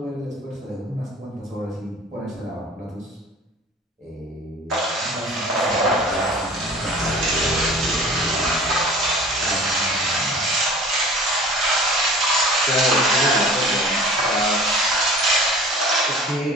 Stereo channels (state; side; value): normal; both; correlation 0.43